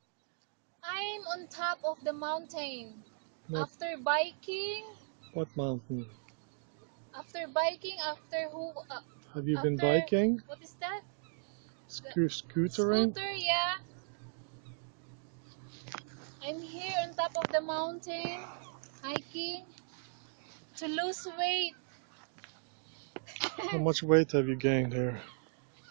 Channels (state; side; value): silent; left; digital silence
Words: I'm on top of the mountain. What After biking, what mountain? after who, Have you been after, biking? what is that? The Scootering? scooter, yeah. I'm here on top of the mountain, hiking to lose weight. How much weight have you gained here?